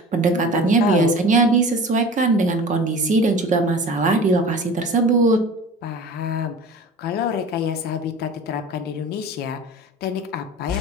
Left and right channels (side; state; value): both; normal; correlation 0.38